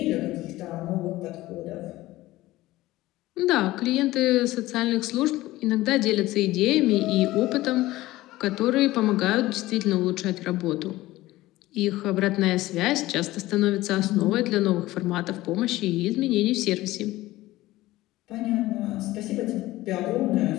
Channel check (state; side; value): quieter; right; 17.3 dB